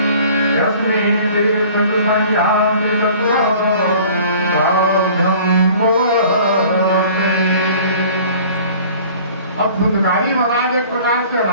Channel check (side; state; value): both; inverted; correlation -0.49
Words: अब धुंधकारी महाराज एक प्रकार से